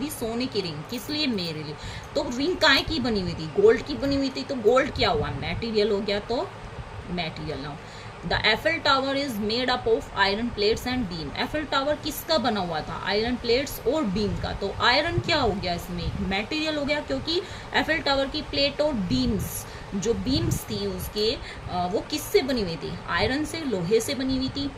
सोने की रिंग, किस लिए, मेरे लिए। तो रिंग काय की बनी हुई थी, गोल्ड की बनी हुई थी, तो गोल्ड क्या हुआ, मटेरियल हो गया, तो material noun. The Eiffel tower is made up of iron plates and beam. Eiffel tower किसका बना हुआ था, आयरन प्लेट्स और बीम का। तो आयरन क्या हो गया, इसमें मटेरियल हो गया, क्योंकि एफिल टावर की प्लेट और बीम्स, जो बीम्स थी उसके, वो किससे बनी हुई थी, आयरन से, लोहे से बनी हुई थी।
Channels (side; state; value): both; identical; correlation 1.00